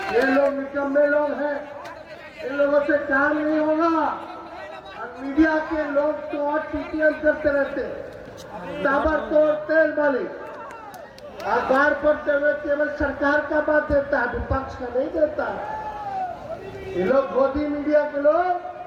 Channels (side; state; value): both; identical; correlation 1.00